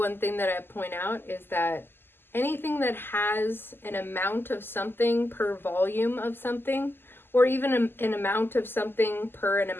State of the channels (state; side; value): late; right; 0.10 ms